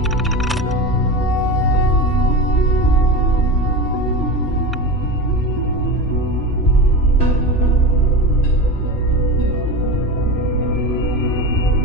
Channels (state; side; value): normal; both; correlation 0.25